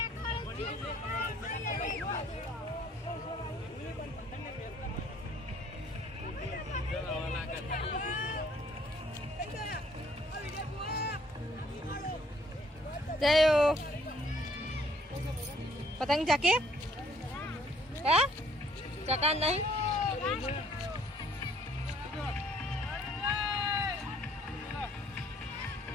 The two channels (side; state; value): both; normal; correlation 0.62